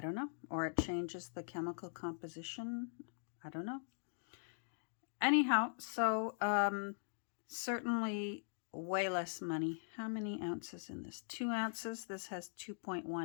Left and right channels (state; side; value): silent; right; digital silence